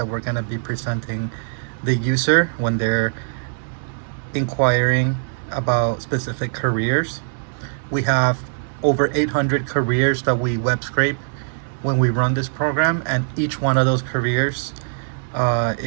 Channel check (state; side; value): silent; left; 65 dB below the other